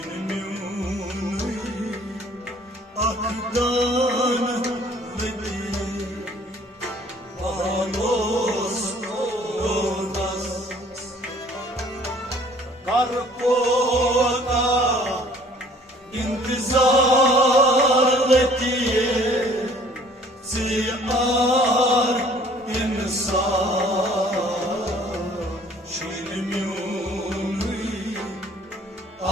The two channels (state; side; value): normal; both; correlation 0.55